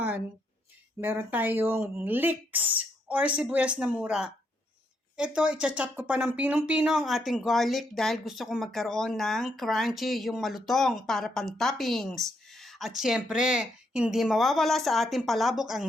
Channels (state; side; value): normal; both; correlation 0.76